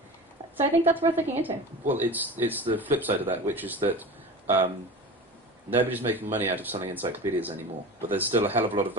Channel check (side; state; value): both; normal; correlation 0.33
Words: So I think that's worth looking into. Well, it's the flip side of that, which is that nobody's making money out of selling encyclopedias anymore, but there's still a hell of a lot of